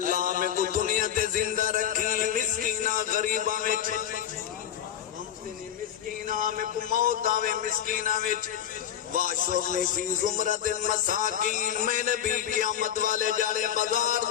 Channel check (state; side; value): quieter; right; 10.1 dB